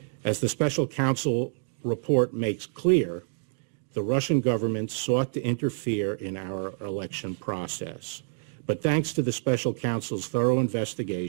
As the Special Counsel report makes clear, the Russian government sought to interfere in our election process. But thanks to the Special Counsel's thorough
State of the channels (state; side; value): silent; left; digital silence